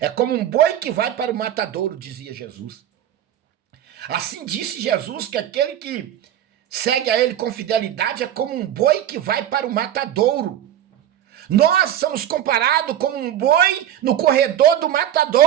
como um boi que vai para o matadouro, dizia Jesus. Assim disse Jesus que aquele que segue a ele com fidelidade é como um boi que vai para o matadouro. Nós somos comparados como um boi no corredor do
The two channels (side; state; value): left; quieter; 11.1 dB